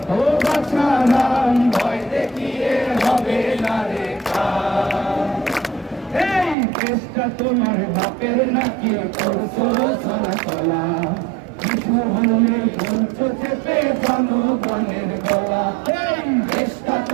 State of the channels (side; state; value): left; drops out; at 6.6 s